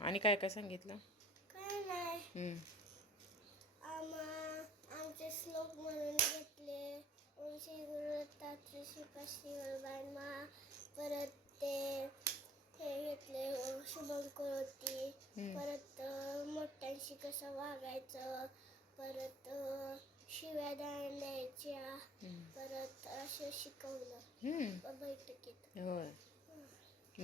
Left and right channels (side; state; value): both; normal; correlation 0.50